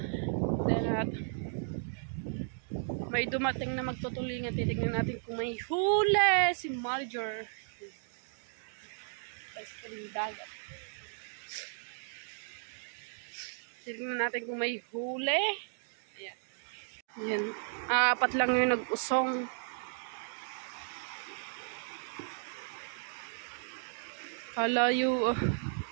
Then at may dumating na magtutulingan, titignan natin kung may huli si Manager. Dagat. Titignan natin kung may huli. Ayan. Ayan. Apat lang yung nag-usong. Kalayo,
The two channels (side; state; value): left; silent; digital silence